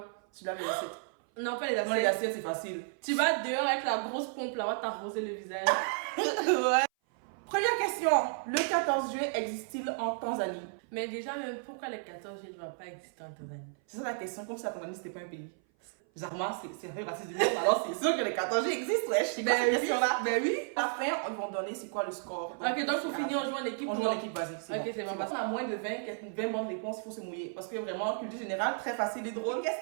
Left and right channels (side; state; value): left; silent; 56 dB below the other